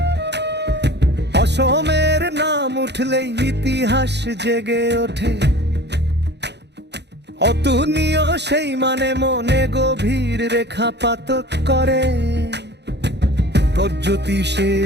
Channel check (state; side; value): late; left; 0.50 ms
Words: নাম উঠলেই ইতিহাস জেগে ওঠে, অতুলনীয় সেই মানে মনে গভীর রেখাপাত করে।